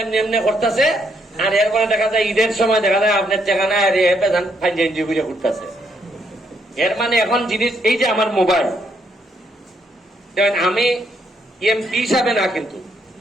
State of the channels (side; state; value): both; normal; correlation 0.73